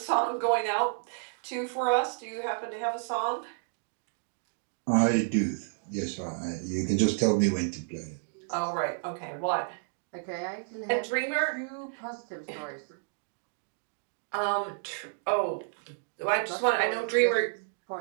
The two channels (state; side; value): silent; left; digital silence